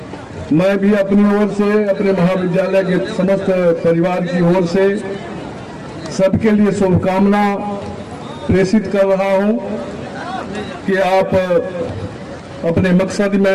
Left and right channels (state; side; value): identical; both; correlation 1.00